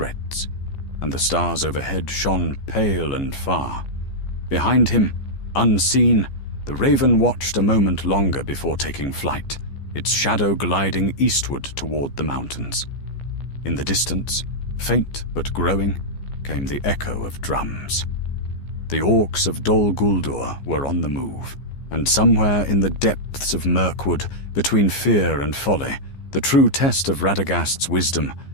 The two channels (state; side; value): late; right; 15 ms